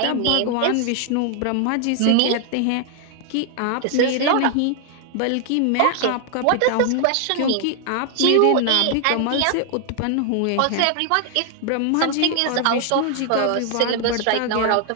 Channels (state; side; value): different; both; correlation 0.00